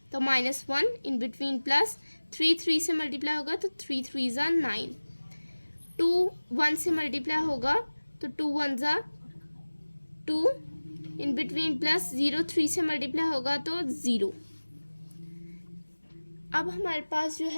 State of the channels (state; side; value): inverted; both; correlation -1.00